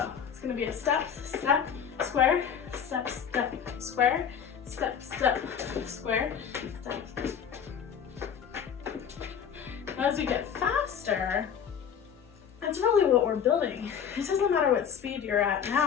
it's gonna be a step, step, square, step, step, square, step, step, square, step. As we get faster, that's really what we're building. It doesn't matter what speed you're at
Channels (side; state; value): right; quieter; 7.8 dB